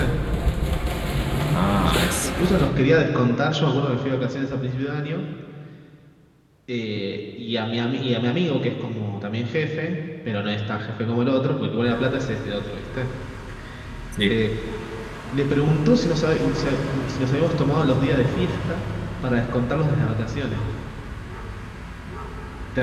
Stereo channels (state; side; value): identical; both; correlation 1.00